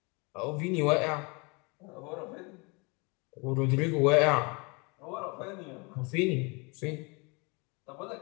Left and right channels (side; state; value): right; quieter; 29.5 dB